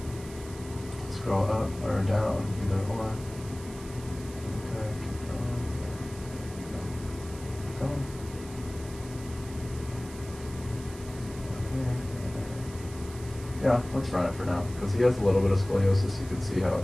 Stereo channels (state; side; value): noise; right; hiss, 17 dB below the sound